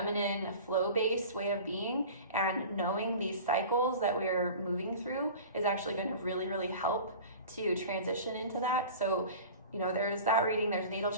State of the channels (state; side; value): inverted; both; correlation -0.39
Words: flow-based way of being. And knowing these cycles that we're moving through is actually going to really, really help to transition into that. So, you know, there's that reading, there's natal